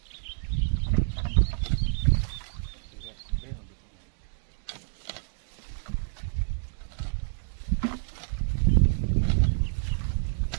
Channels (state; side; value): silent; left; digital silence